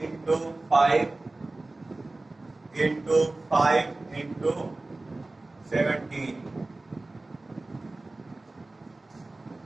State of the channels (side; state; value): left; quieter; 3.0 dB